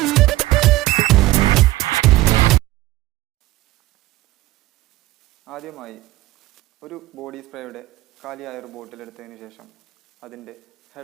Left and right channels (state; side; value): quieter; left; 17.4 dB